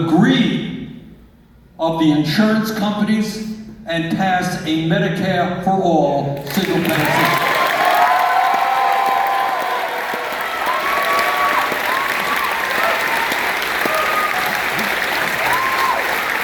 greed of the insurance companies and pass a Medicare for all single payer system.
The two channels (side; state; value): both; identical; correlation 1.00